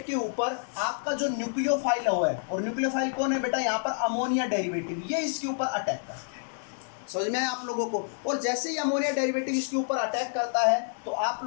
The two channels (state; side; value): silent; right; digital silence